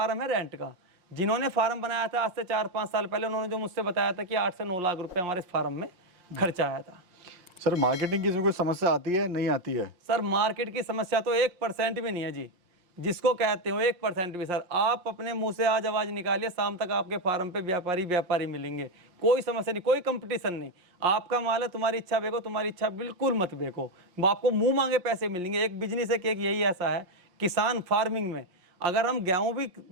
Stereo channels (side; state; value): left; late; 5.6 ms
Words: है रेंट का। जिन्होंने फार्म बनाया था आज से 4-5 साल पहले, उन्होंने जो मुझसे बताया था कि 8 से 9 लाख रुपए हमारे इस फार्म में खर्चा आया था। सर मार्केटिंग की इसमें कोई समस्या आती है, नहीं आती है? सर मार्केट की समस्या तो 1% भी नहीं है जी, जिसको कहते हो 1% भी। सर आप अपने मुंह से आज आवाज़ निकालिए, शाम तक आपके फार्म पे व्यापारी मिलेंगे, कोई समस्या नहीं, कोई कंपटीशन नहीं। आपका माल है, तुम्हारी इच्छा बेचो, तुम्हारी इच्छा बिल्कुल मत बेचो, आपको मुंह मांगे पैसे मिलेंगे। एक बिजनेस है कि एक यही ऐसा है किसान फार्मिंग में, अगर हम गेहूँ भी